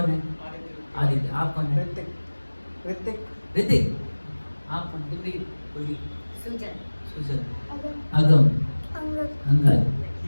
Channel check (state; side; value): inverted; both; correlation -1.00